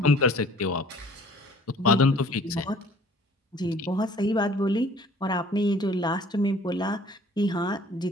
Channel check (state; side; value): normal; both; correlation 0.53